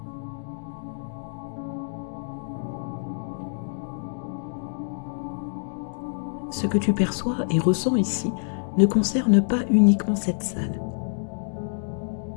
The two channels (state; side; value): silent; right; digital silence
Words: Ce que tu perçois et ressens ici ne concerne pas uniquement cette salle.